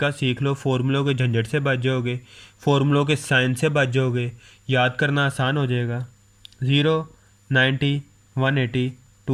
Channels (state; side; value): identical; both; correlation 1.00